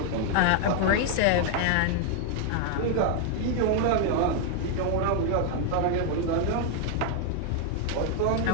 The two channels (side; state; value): both; different; correlation 0.00